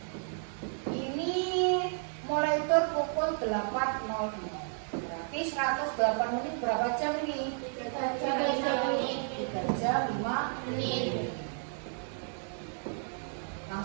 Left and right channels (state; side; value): silent; left; 56 dB below the other